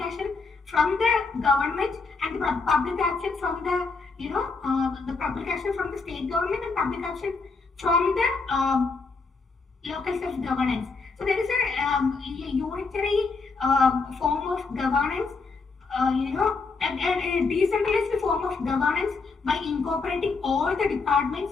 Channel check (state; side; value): quieter; right; 4.3 dB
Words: from the government and the public action from the public action from the state government and public action from the local self-governance. So there is a unitary form of governance, a decentralized form of governance by incorporating all the